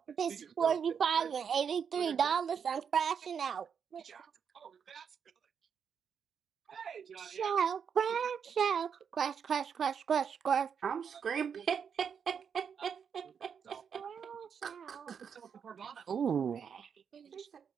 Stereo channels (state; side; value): quieter; left; 7.1 dB